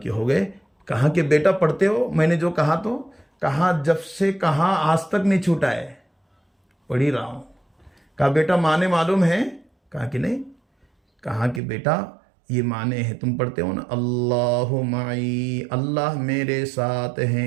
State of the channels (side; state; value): left; drops out; at 11.6 s